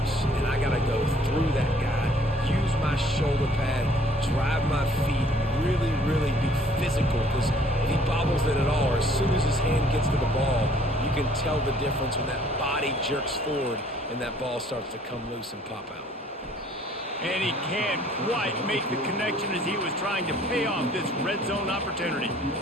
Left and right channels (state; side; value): normal; both; correlation 0.59